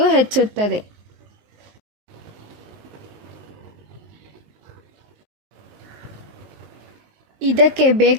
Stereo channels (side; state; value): left; late; 19 ms